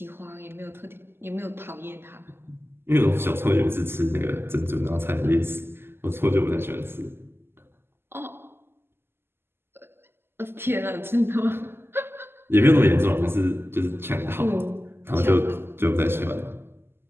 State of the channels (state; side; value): late; left; 0.11 ms